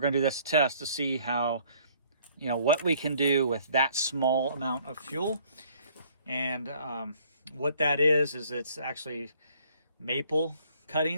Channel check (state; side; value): inverted; both; correlation -0.60